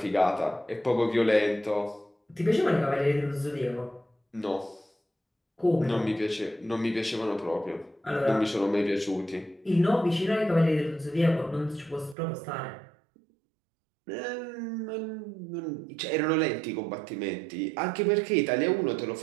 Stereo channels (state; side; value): drops out; left; at 12.2 s